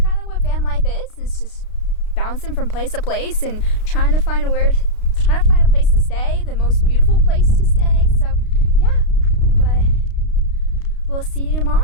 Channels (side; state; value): right; late; 32 ms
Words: of what van life is. It's just bouncing from place to place and trying to find a place to stay, the most beautiful place to stay. So yeah, but we'll see you